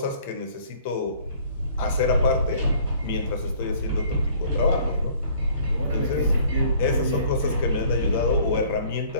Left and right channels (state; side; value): inverted; both; correlation -0.55